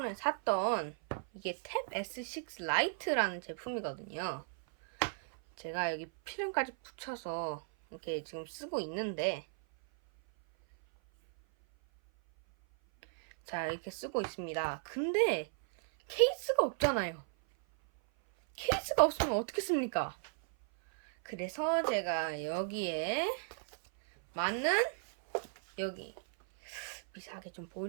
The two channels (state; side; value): silent; left; 54 dB below the other